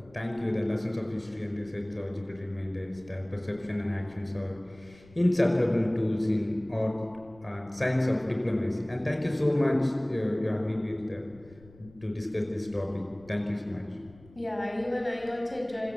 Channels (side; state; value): left; noise; rumble, 24 dB below the sound